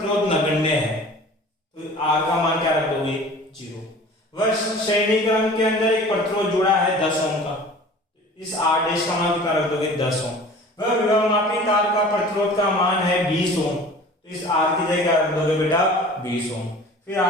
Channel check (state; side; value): normal; both; correlation 0.43